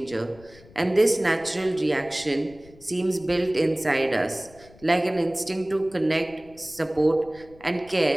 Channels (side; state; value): left; noise; rumble, 24 dB below the sound